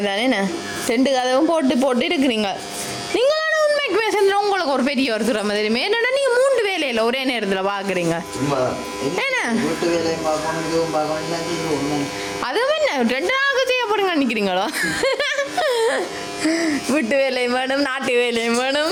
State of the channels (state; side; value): identical; both; correlation 1.00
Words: ரெண்டு கதவும் போட்டு இருக்கிறீங்க. நீங்களான உண்மைக்குமே சேர்ந்து உங்களுக்கு ஒரு பெரிய ஒரு திறமை தெரியுமே. என்னடா நீங்கள் 3 வேலையில் ஒரே நேரத்தில் பார்க்குறீங்க. என்ன அதுவும் என்ன 2 நாளுக்கு செய்ய போறீங்க நினைக்கிறீங்களோ? வீட்டு வேலையும் வேணும், நாட்டு வேலையும் வேணும்.